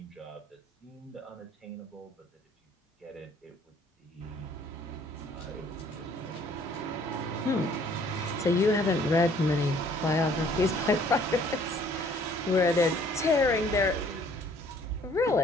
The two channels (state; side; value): normal; both; correlation 0.59